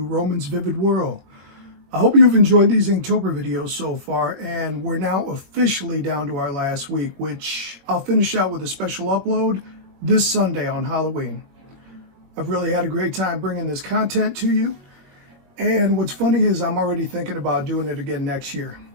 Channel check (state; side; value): late; left; 21 ms